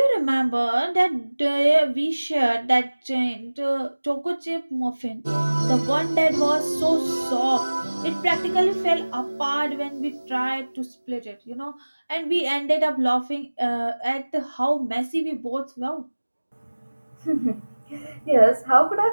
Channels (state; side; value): inverted; both; correlation -1.00